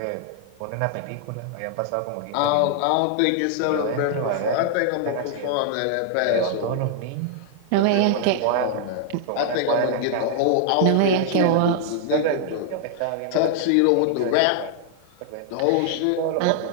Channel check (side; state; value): both; different; correlation 0.00